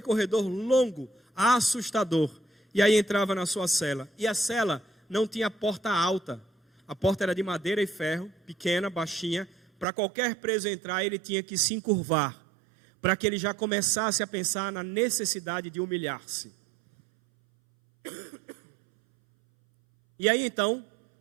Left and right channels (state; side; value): drops out; left; at 9.9 s